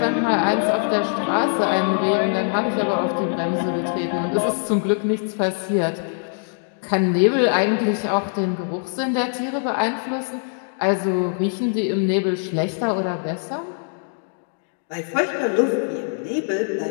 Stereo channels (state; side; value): silent; right; digital silence